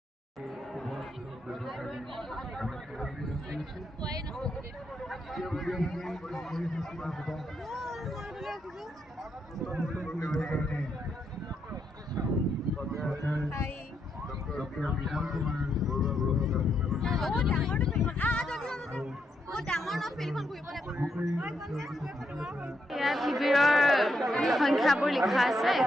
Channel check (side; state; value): both; normal; correlation 0.79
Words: ইয়াত শিবিৰৰ সংখ্যাবোৰ লিখা আছে